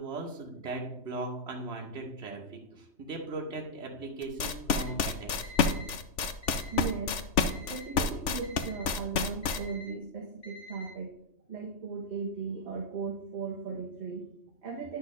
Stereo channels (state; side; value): late; right; 3.4 ms